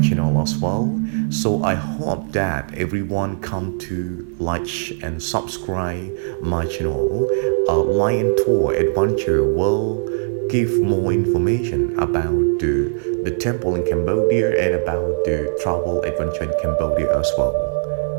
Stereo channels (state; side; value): silent; left; 57 dB below the other